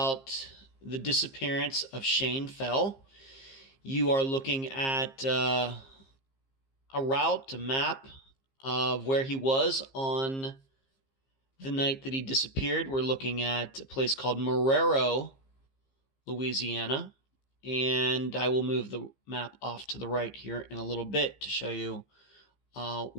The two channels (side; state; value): right; late; 15 ms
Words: the disappearance of Shane Fell. You are looking at a map of where he was on the night that he disappeared. We're looking at a place called Marrero, Louisiana, and I will move the map off to the right here in a little bit to show you